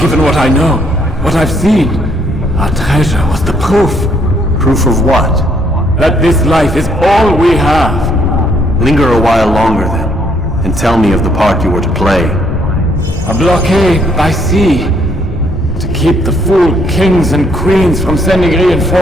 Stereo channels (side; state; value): both; normal; correlation 0.69